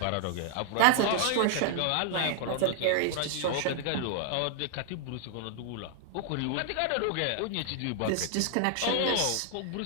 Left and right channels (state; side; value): different; both; correlation 0.00